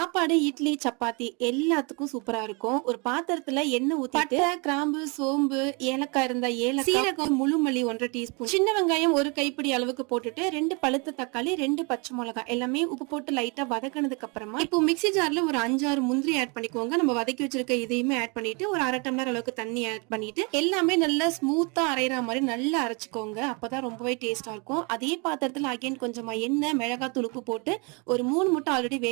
இட்லி, சப்பாத்தி எல்லாத்துக்கும் சூப்பரா இருக்கும். ஒரு பாத்திரத்துல எண்ணெய் ஊத்திட்டு பட்டை, கிராம்பு, சோம்பு, ஏலக்காய் இருந்தா ஏலக்காய், சீரகம், முழு மல்லி 1 டீஸ்பூன், சின்ன வெங்காயம் 1 கைப்பிடி அளவுக்கு போட்டுட்டு 2 பழுத்த தக்காளி, 2 பச்சை மிளகாய் எல்லாமே உப்பு போட்டு லைட்டா வதக்கினதுக்கு அப்புறமா இப்போ மிக்ஸி ஜார்ல ஒரு 5-6 முந்திரி ஆட் பண்ணிக்கோங்க. நம்ம வதக்கி வச்சிருக்க இதையுமே ஆட் பண்ணிட்டு ஒரு 1/2 டம்ளர் அளவுக்கு தண்ணி ஆட் பண்ணிட்டு எல்லாமே நல்லா ஸ்மூத்தா அரைகிற மாதிரி நல்லா அரைச்சுக்கோங்க. அப்பதான் ரொம்பவே டேஸ்டா இருக்கும். அதே பாத்திரத்துல அகைன் கொஞ்சமா எண்ணெய், மிளகாத்தூள், உப்பு போட்டு ஒரு 3 முட்டை ஆல்ரெடி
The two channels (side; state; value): left; quieter; 31.5 dB